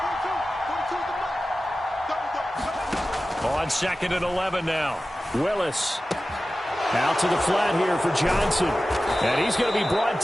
On 2nd and 11 now. Willis. Out to the flat here for Johnson. And he's going to be brought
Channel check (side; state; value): both; normal; correlation 0.95